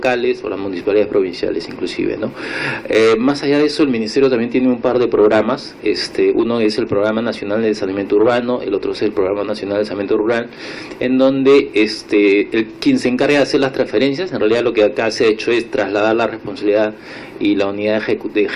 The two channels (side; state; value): both; identical; correlation 1.00